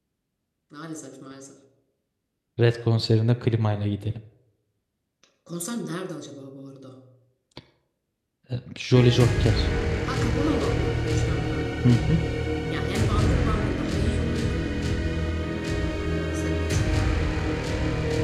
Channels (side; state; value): both; identical; correlation 1.00